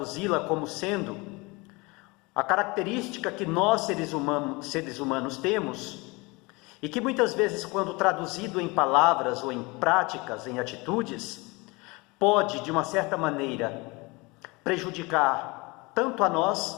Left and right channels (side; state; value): right; quieter; 25.6 dB